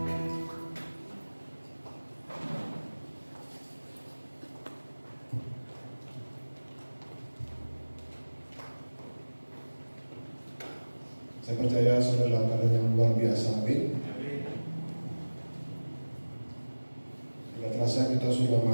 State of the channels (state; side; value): inverted; both; correlation -1.00